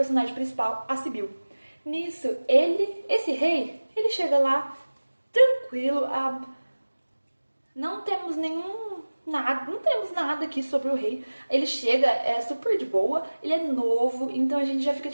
principal, a Sibyl. Nisso, esse rei, ele chega lá tranquilo, não temos nada aqui sobre o rei. Ele chega, é super de boa, ele é novo, então a gente já fica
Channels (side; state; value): both; inverted; correlation -1.00